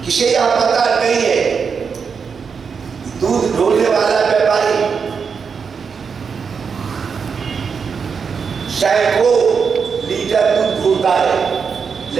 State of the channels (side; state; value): left; quieter; 5.9 dB